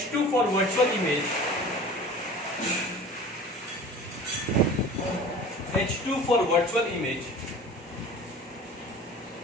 for virtual image. H2 for virtual image.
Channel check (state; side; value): normal; both; correlation 0.41